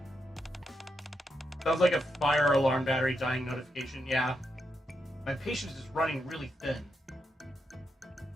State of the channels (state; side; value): normal; both; correlation 0.83